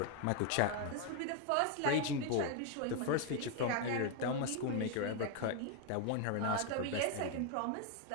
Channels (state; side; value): different; both; correlation 0.01